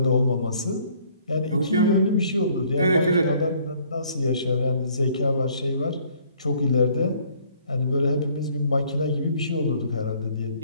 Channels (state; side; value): inverted; both; correlation -0.61